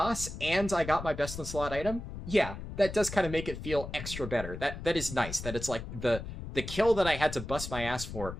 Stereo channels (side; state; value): left; noise; rumble, 9 dB below the sound